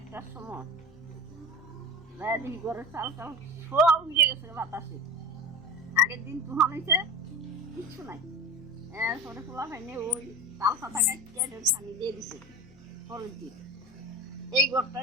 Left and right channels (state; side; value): normal; both; correlation 0.31